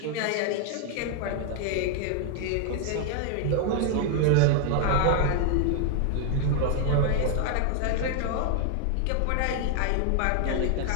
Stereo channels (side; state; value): both; different; correlation 0.00